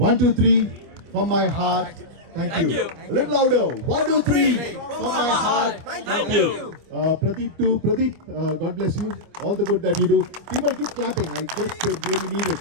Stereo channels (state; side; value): late; left; 25 ms